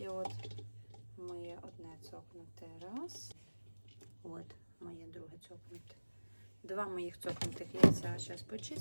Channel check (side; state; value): both; inverted; correlation -1.00